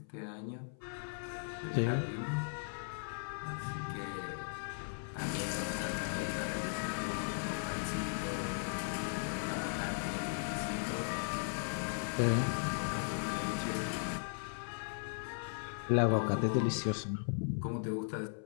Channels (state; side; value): silent; right; 53 dB below the other